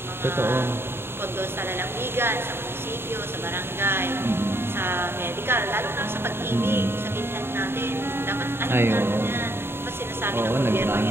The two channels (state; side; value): late; left; 0.11 ms